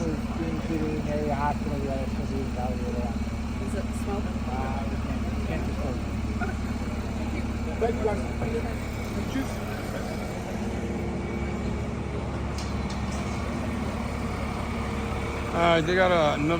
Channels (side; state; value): both; identical; correlation 1.00